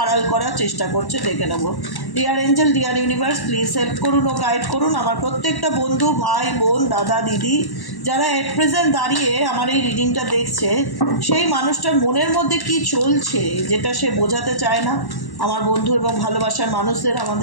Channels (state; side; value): late; right; 1.1 ms